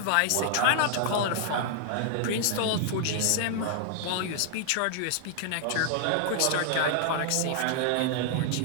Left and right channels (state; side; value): different; both; correlation 0.00